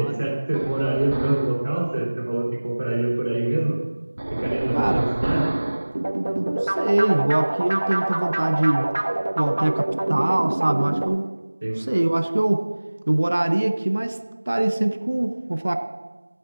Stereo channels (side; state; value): both; inverted; correlation -1.00